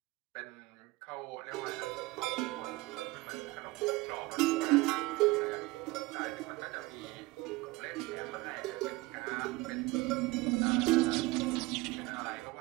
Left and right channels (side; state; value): left; quieter; 21.8 dB